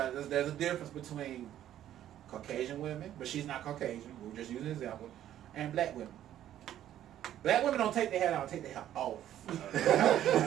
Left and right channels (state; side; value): quieter; left; 11.8 dB